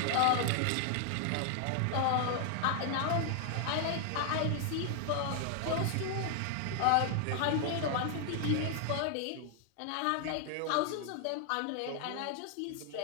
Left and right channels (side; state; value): both; different; correlation 0.00